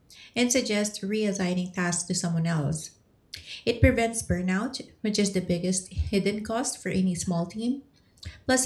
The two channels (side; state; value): both; identical; correlation 1.00